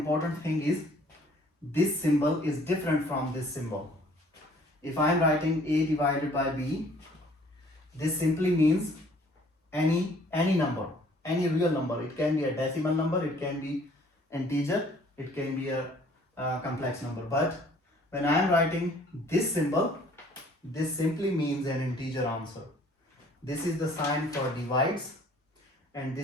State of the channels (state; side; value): normal; both; correlation 0.57